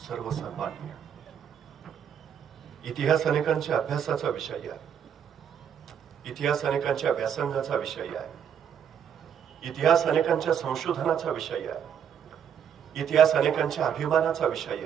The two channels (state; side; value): quieter; left; 8.4 dB